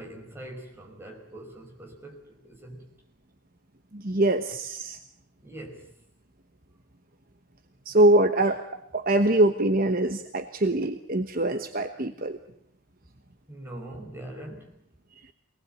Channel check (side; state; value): both; normal; correlation 0.22